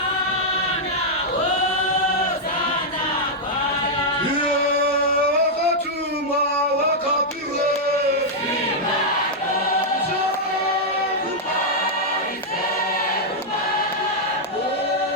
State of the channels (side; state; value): both; normal; correlation -0.05